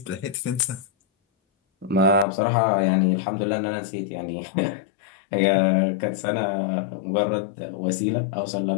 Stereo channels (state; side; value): drops out; right; at 2.2 s